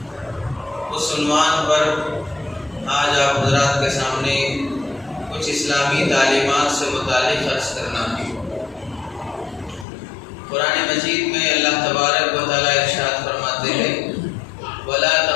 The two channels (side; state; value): right; drops out; at 9.9 s